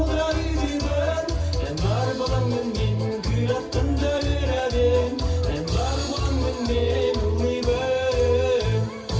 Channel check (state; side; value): identical; both; correlation 1.00